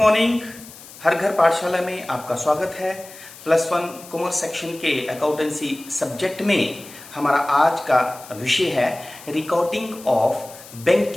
हर घर पाठशाला में आपका स्वागत है। +1 कॉमर्स सेक्शन के अकाउंटेंसी सब्जेक्ट में हमारा आज का विषय है recording of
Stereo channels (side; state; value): left; noise; hiss, 18 dB below the sound